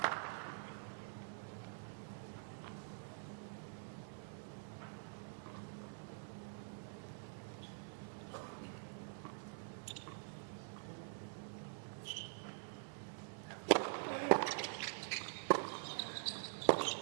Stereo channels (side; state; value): left; silent; digital silence